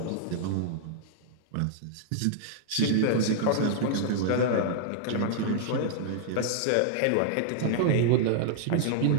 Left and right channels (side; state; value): both; different; correlation -0.01